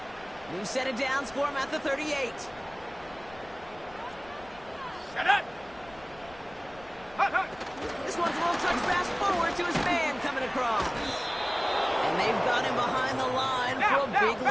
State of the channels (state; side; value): noise; left; rumble, 23 dB below the sound